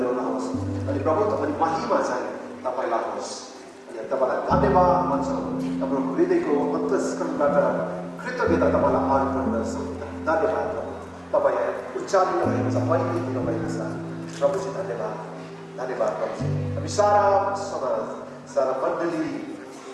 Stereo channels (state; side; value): identical; both; correlation 1.00